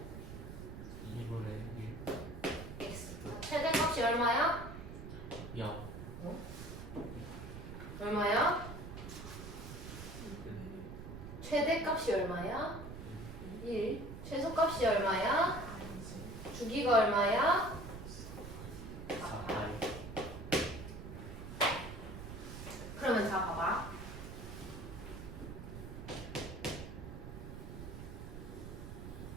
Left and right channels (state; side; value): noise; right; rumble, 10 dB below the sound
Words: 2분의 x. 최대값이 얼마야? 1. 0. 얼마야? 최대값이 얼마야? 1. 최소값이 얼마야? 주기가 얼마야? 4파이. 그러면 자 봐봐.